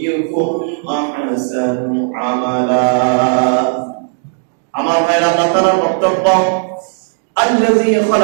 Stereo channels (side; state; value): left; silent; 70 dB below the other